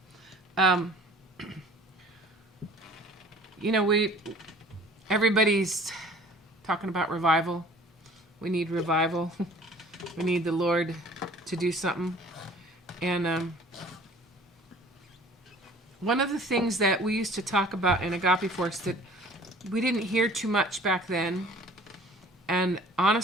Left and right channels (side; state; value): both; normal; correlation 0.49